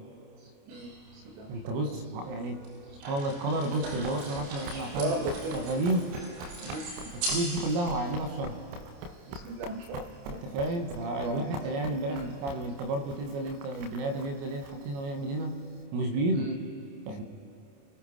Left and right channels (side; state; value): left; late; 29 ms